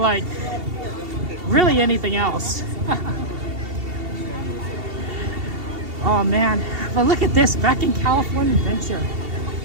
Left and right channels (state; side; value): late; left; 2.7 ms